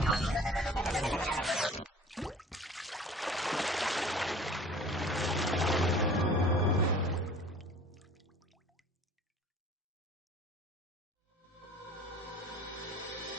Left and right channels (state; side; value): normal; both; correlation 0.46